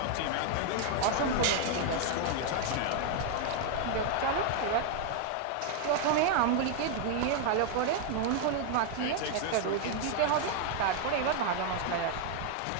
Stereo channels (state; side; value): different; both; correlation 0.00